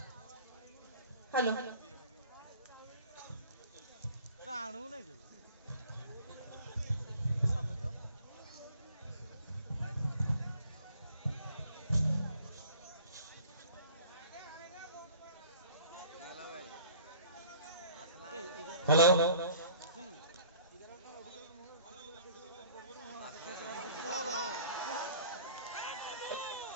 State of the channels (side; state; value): both; inverted; correlation -0.50